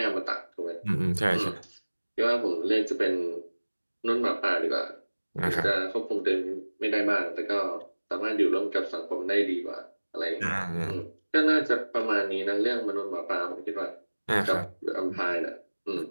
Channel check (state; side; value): inverted; both; correlation -1.00